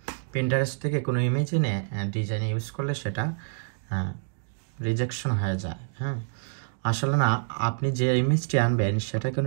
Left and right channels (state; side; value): silent; left; 60 dB below the other